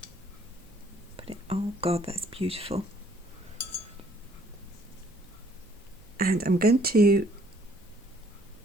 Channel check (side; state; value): right; noise; hum, 27 dB below the sound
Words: Oh God, that's beautiful. And I'm going to